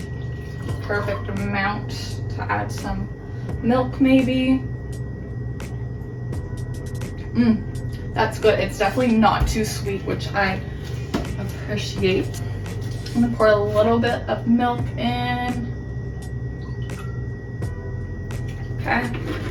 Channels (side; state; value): both; identical; correlation 1.00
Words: Perfect amount to add some milk maybe. That's good. It's definitely not too sweet, which I appreciate. I'm gonna pour a little bit of milk in. Okay.